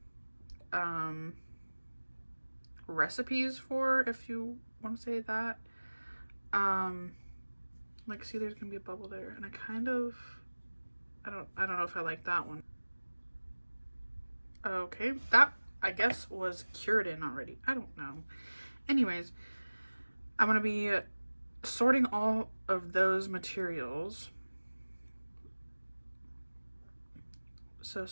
recipes for, if you want to say that. Like, see, there's gonna be a bubble there, and I don't know if I like that one. Okay, that I guess was cured in already. I don't know. Anyways, I'm gonna be sorting all of those materials, so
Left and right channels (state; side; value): inverted; both; correlation -1.00